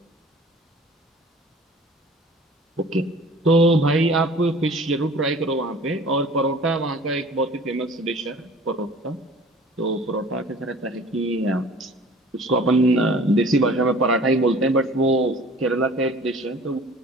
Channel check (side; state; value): both; normal; correlation 0.47